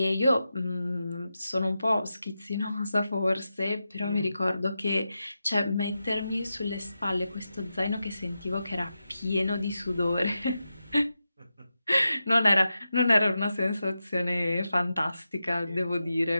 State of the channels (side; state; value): both; inverted; correlation -0.90